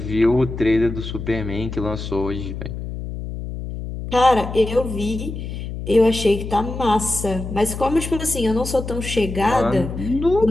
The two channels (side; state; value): left; noise; hum, 7 dB below the sound